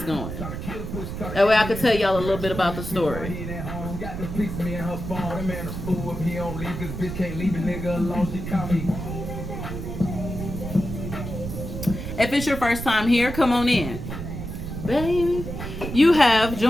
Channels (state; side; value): noise; right; rumble, 7 dB below the sound